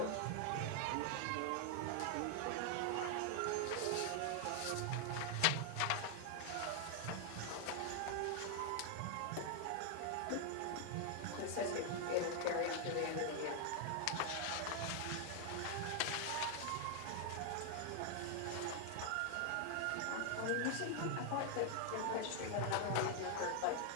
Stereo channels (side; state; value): both; different; correlation 0.00